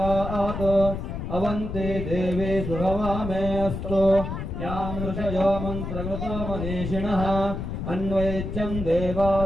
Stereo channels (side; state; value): left; noise; rumble, 5 dB below the sound